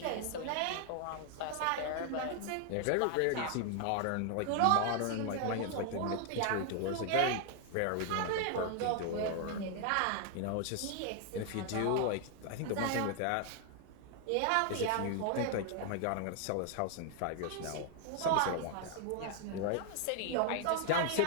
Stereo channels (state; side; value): different; both; correlation 0.00